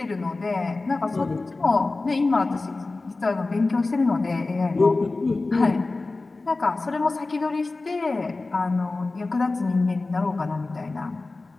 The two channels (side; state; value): right; quieter; 3.4 dB